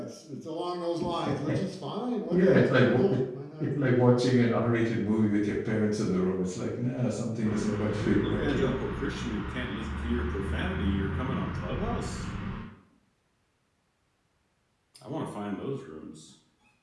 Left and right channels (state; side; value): identical; both; correlation 1.00